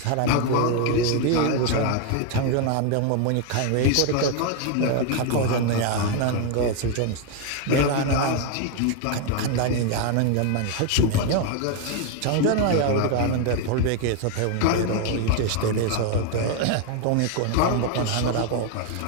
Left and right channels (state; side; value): different; both; correlation 0.01